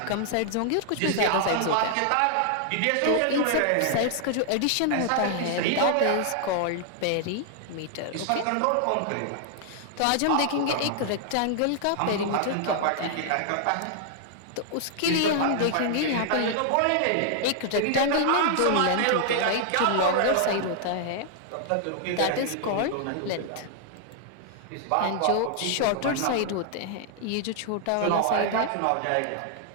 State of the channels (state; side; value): different; both; correlation -0.01